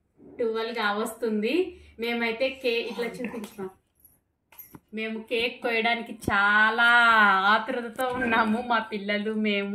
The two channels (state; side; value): identical; both; correlation 1.00